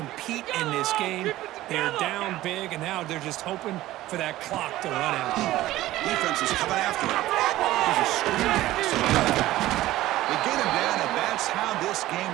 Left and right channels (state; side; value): quieter; left; 15.8 dB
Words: in this game. They're down big, and now they're just hoping for that clock to run out. Defense is coming after him. There's a screen pass. They get him down, and that's how this game